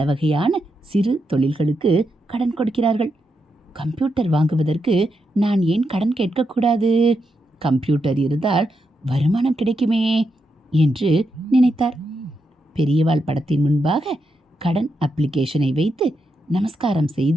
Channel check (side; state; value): both; normal; correlation 0.84